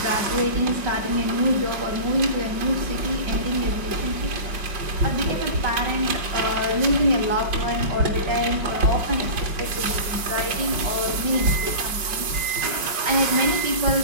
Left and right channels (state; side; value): late; left; 5.4 ms